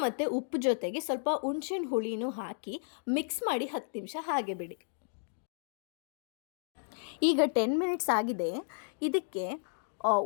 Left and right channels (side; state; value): right; silent; digital silence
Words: ಮತ್ತು ಉಪ್ಪು ಜೊತೆಗೆ ಸ್ವಲ್ಪ ಹುಣಸೆಹಣ್ಣು ಹುಳಿನೂ ಹಾಕಿ ಮಿಕ್ಸ್ ಮಾಡಿ 10 ನಿಮಿಷ ಹಾಗೆ ಬಿಡಿ. ಈಗ 10 ಮಿನಿಟ್ಸ್ ಆಗಿದೆ. ಇದಕ್ಕೆ